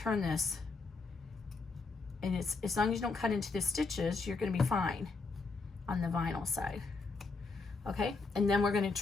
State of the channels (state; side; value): quieter; right; 4.1 dB